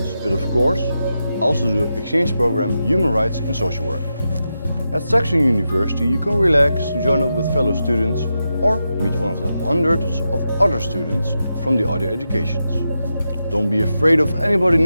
but of course also the exchange program Human Rights in Social Work. At Saxion University you can relax, join up with fellow students or meet one of the hundreds of other students from the other educations. Don't be afraid of anybody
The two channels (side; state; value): both; inverted; correlation -0.88